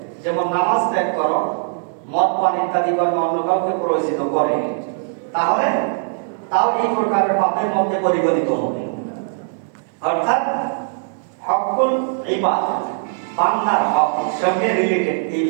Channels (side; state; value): left; silent; 64 dB below the other